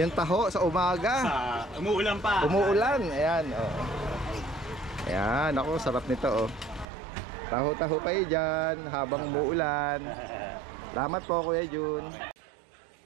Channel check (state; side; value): drops out; left; at 6.9 s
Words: taho sa umaga. Umuulan pa. Umuulan. Ayan, oh. Ayan, ako, sarap nito oh. Taho-taho kayo dyan habang umuulan. Salamat po Kuya Jun.